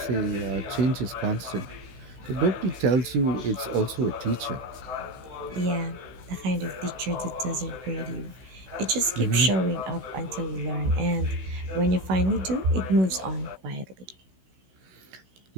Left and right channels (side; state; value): left; late; 16 ms